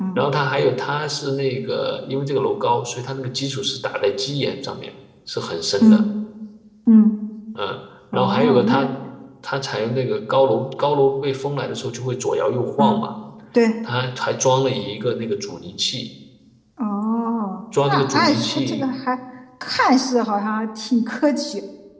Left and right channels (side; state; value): both; identical; correlation 1.00